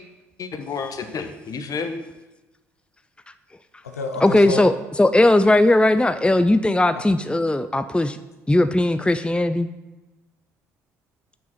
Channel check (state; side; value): normal; both; correlation 0.93